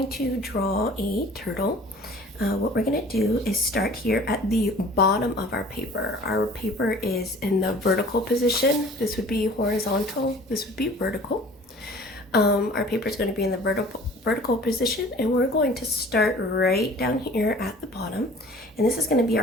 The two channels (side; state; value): both; normal; correlation 0.47